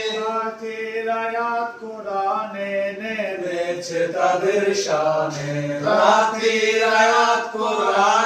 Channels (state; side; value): identical; both; correlation 1.00